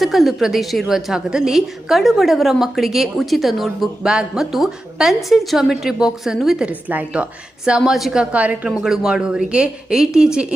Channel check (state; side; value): normal; both; correlation 0.92